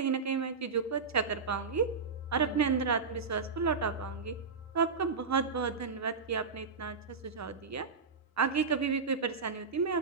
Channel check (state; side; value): quieter; left; 5.0 dB